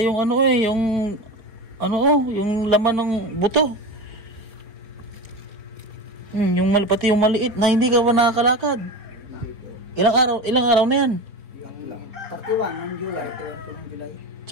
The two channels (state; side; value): late; left; 4.2 ms